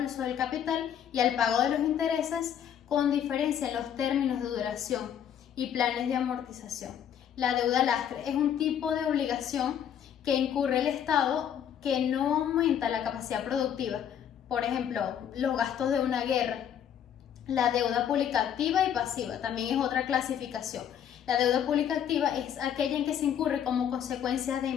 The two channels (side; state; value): right; quieter; 9.3 dB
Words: del capital y al pago de los intereses con diferencia en los términos de duración y planes de amortización. La deuda lastre es un tipo de obligación que incurre el Estado que no aumenta la capacidad productiva, por ejemplo, los gastos de una guerra. La deuda pública activa y pasiva también es otra clasificación. La deuda pública activa es aquella en que se incurre como consecuencia de